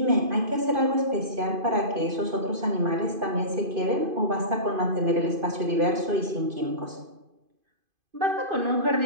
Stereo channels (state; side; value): late; left; 2.5 ms